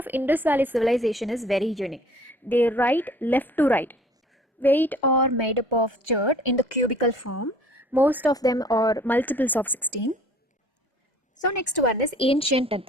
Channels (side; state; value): both; normal; correlation 0.53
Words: Indus Valley civilization is very unique. They write left to right. Weight are made up of chert in the cubical form. Most of them are multiples of 16. So next one is ancient